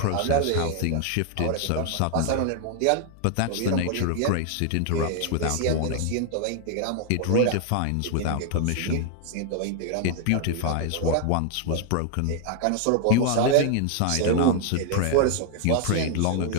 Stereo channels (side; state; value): both; different; correlation 0.00